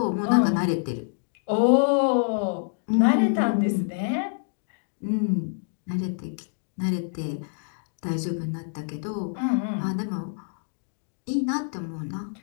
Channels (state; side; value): silent; right; digital silence